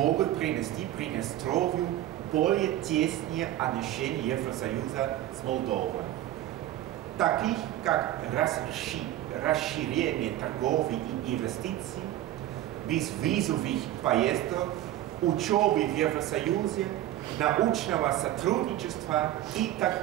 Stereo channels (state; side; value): quieter; left; 13.7 dB